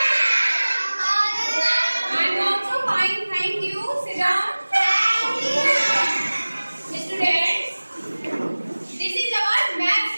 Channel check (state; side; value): inverted; both; correlation -1.00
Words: I'm also fine, thank you. Sit down. Thank you. Students, this is our maths